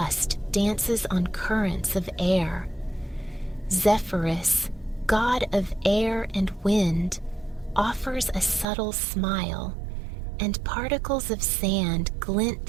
dances on currents of air. Zephyrus, god of air and wind, offers a subtle smile, and particles of sand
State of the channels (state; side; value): drops out; left; at 8.7 s